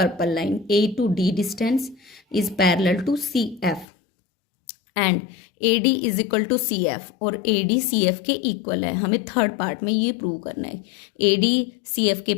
line A to D distance is parallel to CF and AD is equal to CF, और AD CF के equal है। हमें third part में ये prove करना है। AD CF के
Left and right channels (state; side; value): drops out; right; at 3.9 s